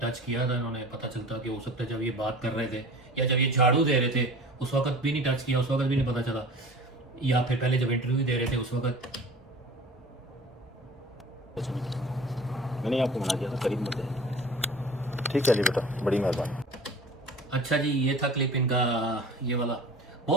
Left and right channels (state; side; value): normal; both; correlation 0.41